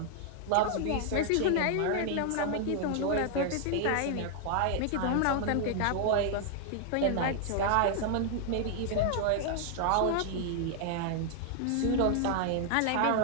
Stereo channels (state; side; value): different; both; correlation 0.00